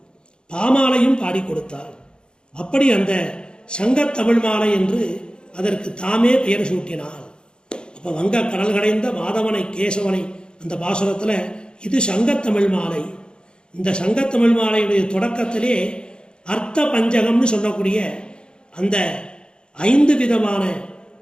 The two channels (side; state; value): right; late; 0.050 ms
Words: பாமாலையும் பாடி கொடுத்தாள். அப்படி அந்த சங்கத்தமிழ் மாலை என்று அதற்கு தாமே பெயர் சூட்டினாள். அப்போ வங்க கடல் கடைந்த மாதவனை கேசவனை அந்த பாசுரத்தில் இது சங்கத்தமிழ் மாலை. இந்த சங்கத்தமிழ் மாலையுடைய தொடக்கத்திலே அர்த்த பஞ்சகம்னு சொல்லக்கூடிய அந்த 5 விதமான